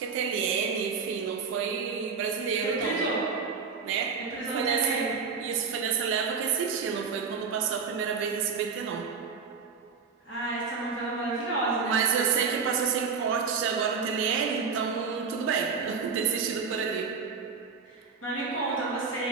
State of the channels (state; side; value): quieter; left; 5.4 dB